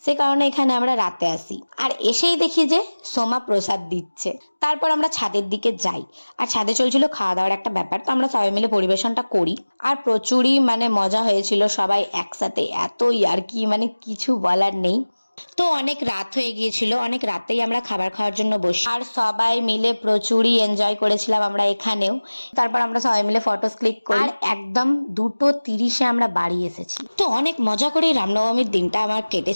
সে কারণে এখানে আমরা রাতে আসি। আর এসেই দেখি যে সোমা প্রসাদ দিচ্ছে। তারপর আমরা ছাদের দিকে যাই, আর ছাদে চলছিল খাওয়া দাওয়ার একটা ব্যাপার, তো আমরা সবাই মিলে পরিবেশনটা করি। আর প্রচুরই মানে মজা হয়েছিল, সবাই একসাথে এত ইয়ার্কি, মানে কিছু বলার নেই। তো অনেক রাত হয়ে গিয়েছিল, অনেক রাতেই আমরা খাবার খাওয়ার জন্য বসি, আর সবাই মিলে প্রচুরই এনজয় করেছিলাম আমরা এখানেও। তারপর আমরা সবাই মিলে ফটোস ক্লিক করি, আর একদম 2:30-এ আমরা বাড়ি এসেছি। তো অনেক মজা করে রামনবমীর দিনটা আমার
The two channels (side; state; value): both; inverted; correlation -1.00